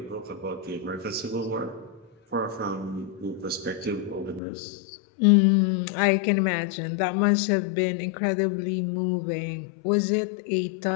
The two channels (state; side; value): drops out; right; at 4.4 s